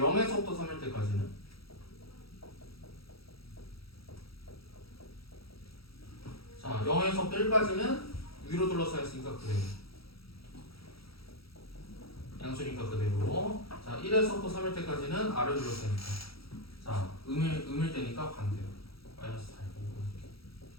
3일 때까지는 자 0에서 1까지는 위로 둘러싸여 있으니까 그대로 양수니까 그대로. 자 1에서부터 3일 때까지는 아래 둘러싸이니까 자 음일 때니까 반대로 마이너스 달고.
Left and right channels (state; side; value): late; right; 0.75 ms